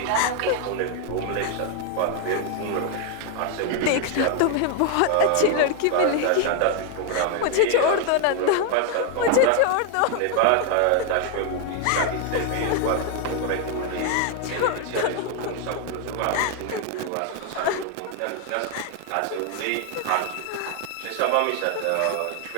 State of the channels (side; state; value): both; different; correlation 0.00